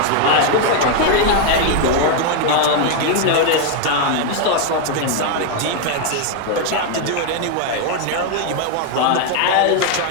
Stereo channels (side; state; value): both; different; correlation 0.01